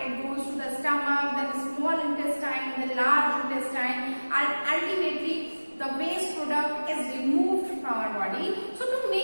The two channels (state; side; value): inverted; both; correlation -1.00